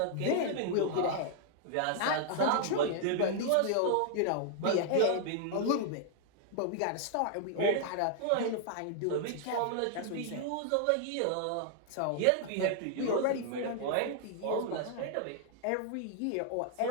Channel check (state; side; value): different; both; correlation 0.00